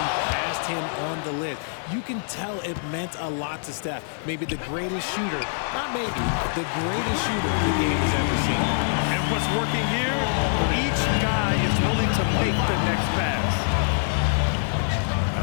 passed him on the list. You can tell it meant a lot to Steph. Maybe the greatest shooter, not maybe, the greatest shooter the game has ever seen. And what's working here? Each guy is willing to make the next pass.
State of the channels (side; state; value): right; silent; 62 dB below the other